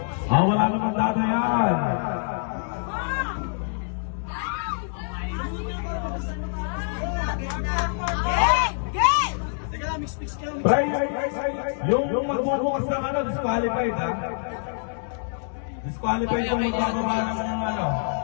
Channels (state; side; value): silent; right; digital silence